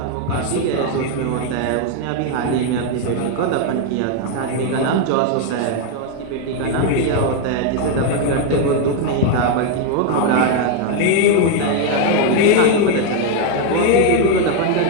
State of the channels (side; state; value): both; different; correlation 0.01